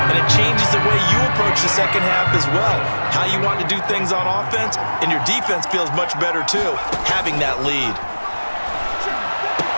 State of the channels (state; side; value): inverted; both; correlation -1.00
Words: and it changes the way you approach the second half as well. How you want to do things on offense, and your defense feels much better too, having that lead.